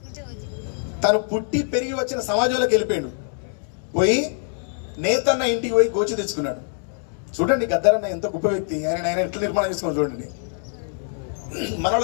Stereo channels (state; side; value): silent; right; 63 dB below the other